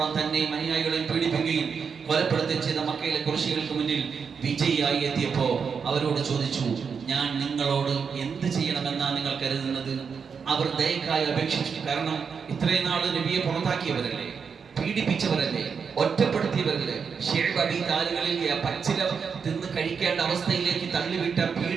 തന്നെയും അനുയായികളെയും പീഡിപ്പിക്കുകയും കൊലപ്പെടുത്തുകയും ചെയ്ത മക്കയിലെ കുറശികൾക്ക് മുന്നിൽ വിജയിയായി എത്തിയപ്പോ അവരോട് ചോദിച്ചു, ഞാൻ നിങ്ങളോട് എന്ത് ചെയ്യണമെന്നാണ് നിങ്ങൾ കരുതുന്നത്? അവർ ദയക്കായി അപേക്ഷിച്ചു. കാരണം ഇത്രയും നാൾ നബിയെ പുറത്താക്കിയവരല്ലേ, പീഡിപ്പിച്ചവരല്ലേ, ഒറ്റപ്പെടുത്തിയവരല്ലേ, താലുകളിൽ പച്ചില തിന്ന് കഴിക്കേണ്ട അവസ്ഥയിലേക്ക് തള്ളിവിട്ട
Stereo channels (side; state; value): left; quieter; 6.1 dB